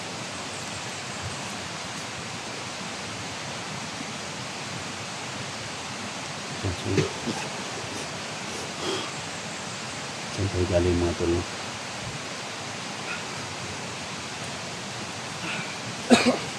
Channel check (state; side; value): identical; both; correlation 1.00